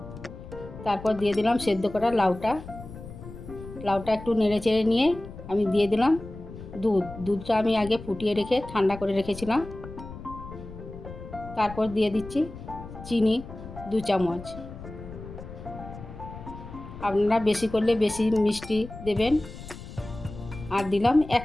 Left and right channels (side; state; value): left; noise; rumble, 13 dB below the sound